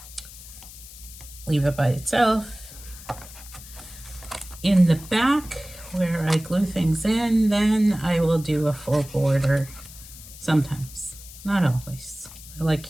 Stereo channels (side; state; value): left; noise; hiss, 17 dB below the sound